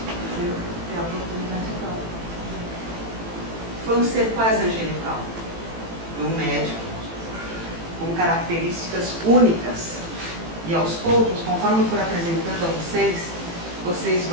Tem a oportunidade de falar. Foi um ser quase angelical, um médico com características únicas. E aos poucos, conforme eu for apresentando a vocês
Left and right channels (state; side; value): late; left; 18 ms